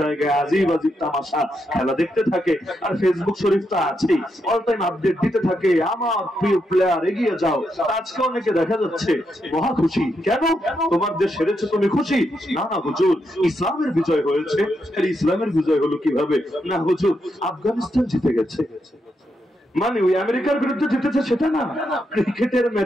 জায়গায় আজিব আজিব তামাশা খেলা দেখতে থাকে। আর ফেসবুক শরীফ তো আছেই, অল টাইম আপডেট দিতে থাকে, আমার প্রিয় প্লেয়ার এগিয়ে যাও। আজকে অনেকে দেখা যাচ্ছে মহা খুশি, কেন তোমার দেশ হেরেছে তুমি খুশি? না না হুজুর, ইসলামের বিজয় হয়েছে। ইসলামের বিজয় হলো কিভাবে? না হুজুর, আফগানিস্তান জিতে গেছে মানে ওই আমেরিকার বিরুদ্ধে জিতেছে সেটা না, ক্রিকেটের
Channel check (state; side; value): normal; both; correlation 0.82